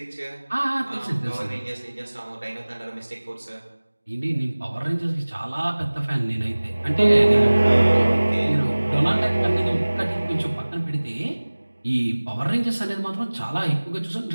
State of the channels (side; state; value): both; inverted; correlation -1.00